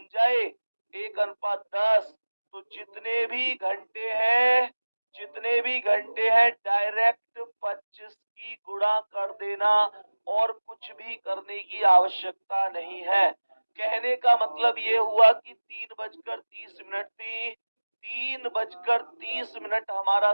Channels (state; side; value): inverted; both; correlation -1.00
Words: जाए 1:10, तो जितने भी घंटे हैं डायरेक्ट 25 की गुणा कर देना और कुछ भी करने की आवश्यकता नहीं है। कहने का मतलब ये हुआ कि 3:30 थी, 3:30 हमारा